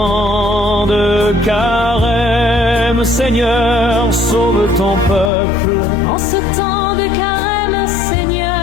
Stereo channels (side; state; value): right; drops out; at 5.3 s